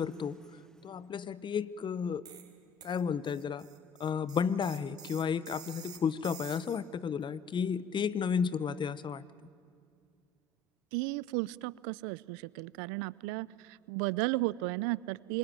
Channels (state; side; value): normal; both; correlation 0.43